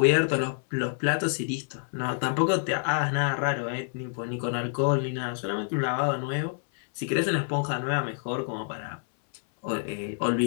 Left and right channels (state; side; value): silent; right; 60 dB below the other